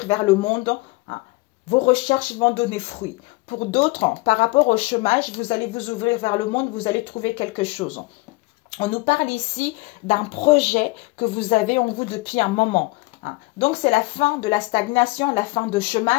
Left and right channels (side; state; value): right; quieter; 23.4 dB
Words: vers le monde. Vos recherches vont donner fruit. Pour d'autres, par rapport au chômage, vous allez vous ouvrir vers le monde, vous allez trouver quelque chose. On nous parle ici d'un projet que vous avez en vous depuis un moment. Donc, c'est la fin de la stagnation, la fin de